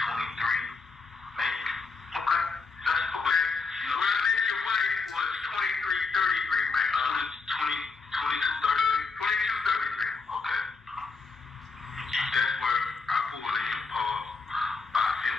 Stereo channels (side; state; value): right; quieter; 4.5 dB